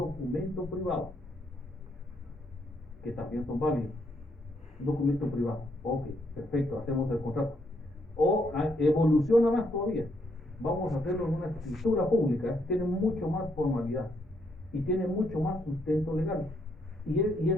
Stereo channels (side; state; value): both; normal; correlation 0.74